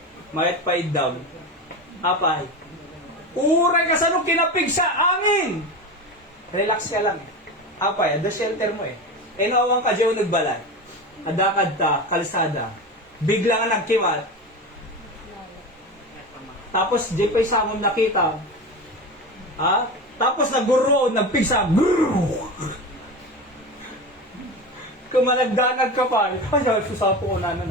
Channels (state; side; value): normal; both; correlation 0.26